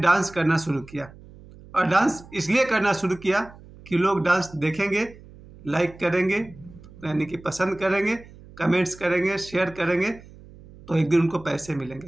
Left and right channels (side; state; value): right; noise; hum, 21 dB below the sound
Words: करना शुरू किया। और डांस इसलिए करना शुरू किया कि लोग डांस देखेंगे, लाइक करेंगे, यानी कि पसंद करेंगे, कमेंट्स करेंगे, शेयर करेंगे, तो एक दिन उनको पैसे